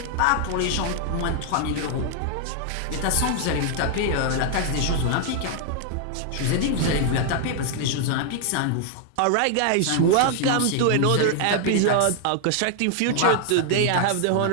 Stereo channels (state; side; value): different; both; correlation 0.00